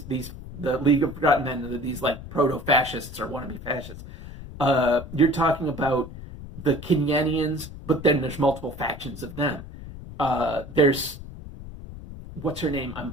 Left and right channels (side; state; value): left; noise; rumble, 13 dB below the sound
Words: League of Forgotten Men, these like proto-fascists or wannabe fascists. You're talking about the Kenyanians, but then there's multiple factions of them. There's, what's her name? I'm